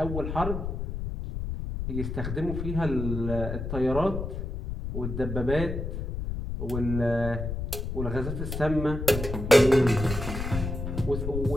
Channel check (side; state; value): left; noise; rumble, 4 dB below the sound